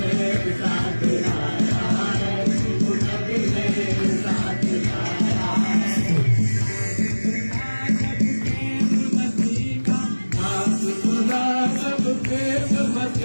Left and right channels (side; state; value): both; inverted; correlation -1.00